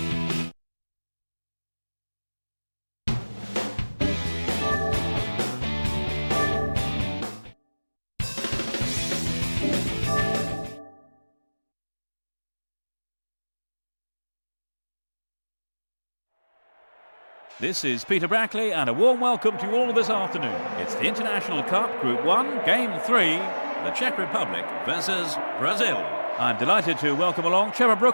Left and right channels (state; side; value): inverted; both; correlation -1.00